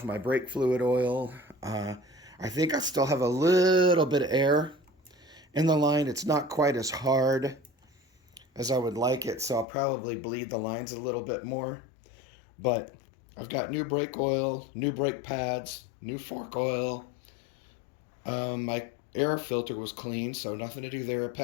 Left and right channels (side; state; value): right; drops out; at 9.7 s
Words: my brake fluid oil. I think I still have a little bit of air in the line. It's not quite as hard as I would like it, so I'll probably bleed the lines a little bit more. But I've got new brake oil, new brake pads, new fork oil. My air filter was clean, so nothing to do there.